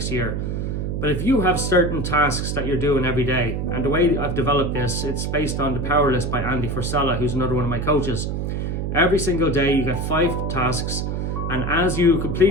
year. But if you have certain tasks that you're doing every day, and the way I've developed this, it's based on the Power List by Andy Frisella, who's another one of my coaches. Every single day you get 5 tasks, and as you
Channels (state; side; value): noise; right; hum, 2 dB below the sound